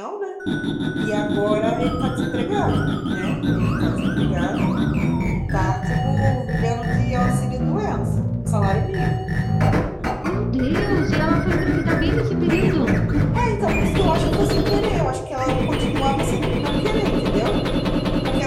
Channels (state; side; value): identical; both; correlation 1.00